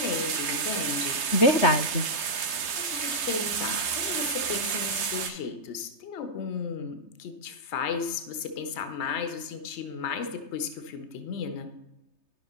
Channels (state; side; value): late; right; 3.3 ms